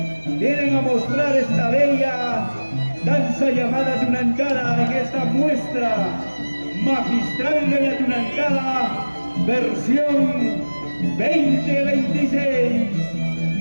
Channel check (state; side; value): inverted; both; correlation -1.00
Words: vienen a mostrar esta bella danza llamada Tunantara en esta muestra magistral de la Tunantara versión 2026.